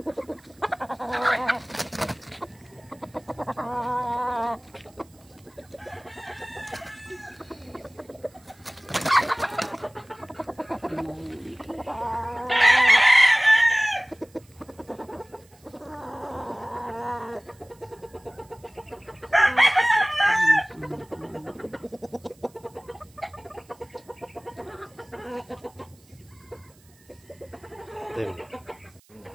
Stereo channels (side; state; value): right; noise; hiss, 29 dB below the sound